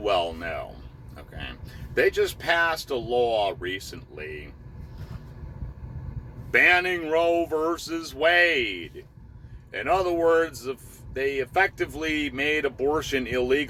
know. Okay, they just passed a law recently banning Roe versus Wade. In other words, they effectively made abortion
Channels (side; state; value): both; identical; correlation 1.00